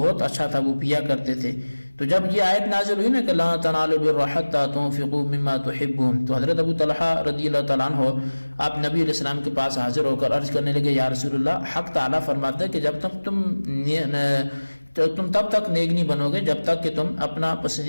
اچھا تھا وہ پیا کرتے تھے۔ تو جب یہ آیت نازل ہوئی نا کہ لا تنالوا البر حتى تنفقوا مما تحبون، تو حضرت ابو طلحہ رضی اللہ تعالیٰ عنہ آپ نبی علیہ السلام کے پاس حاضر ہو کر عرض کرنے لگے، یا رسول اللہ، حق تعالیٰ فرماتا ہے کہ جب تک تم تب تک نیک نہیں بنو گے جب تک کہ تم اپنا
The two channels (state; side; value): inverted; both; correlation -1.00